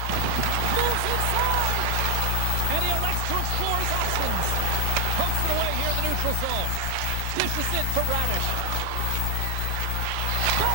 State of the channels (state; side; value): different; both; correlation 0.00